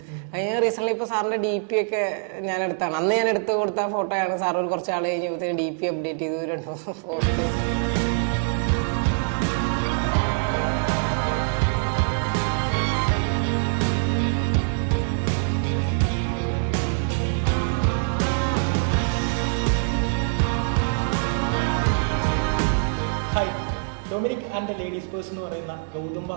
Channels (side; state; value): left; silent; 62 dB below the other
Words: കഴിഞ്ഞ റീസെന്റ് ഇപ്പോൾ സാറിന്റെ DP ഒക്കെ ഞാൻ എടുത്താണ്. അന്ന് ഞാൻ എടുത്ത് കൊടുത്ത ഫോട്ടോയാണ്. സാർ ഒരു കുറച്ച് ആൾ കഴിഞ്ഞപ്പോഴത്തേക്ക് DP അപ്ഡേറ്റ് ചെയ്തു 2 photo. Dominic and the ladies purse എന്ന് പറയുന്ന ഗൗതം